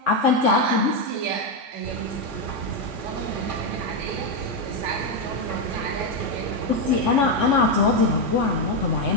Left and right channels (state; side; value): late; left; 3.5 ms